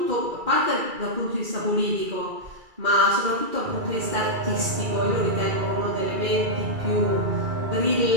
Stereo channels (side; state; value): left; late; 2.3 ms